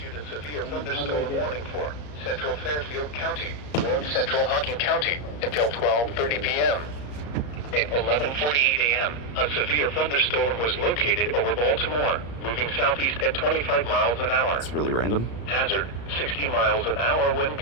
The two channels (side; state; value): right; late; 34 ms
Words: a severe thunderstorm warning for Central Fairfield County, North Central Hocking County until 12:30 p.m. At 11:48 a.m., a severe thunderstorm was located over Baltimore, moving southeast at 25 miles an hour. That's really random. Hazard, 60 miles an hour wind